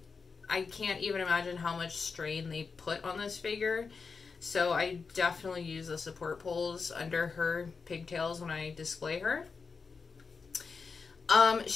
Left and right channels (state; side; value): quieter; right; 5.0 dB